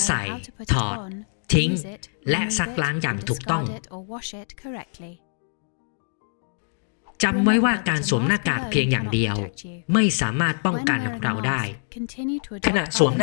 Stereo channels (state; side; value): silent; right; digital silence